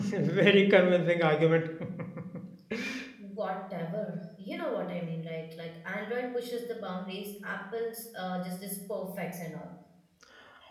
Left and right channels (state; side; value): identical; both; correlation 1.00